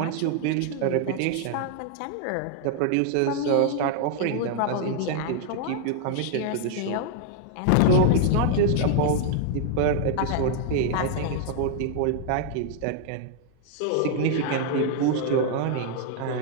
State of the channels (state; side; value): different; both; correlation 0.00